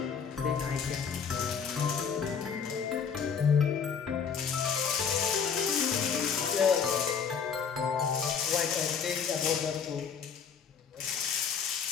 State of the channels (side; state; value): right; quieter; 6.7 dB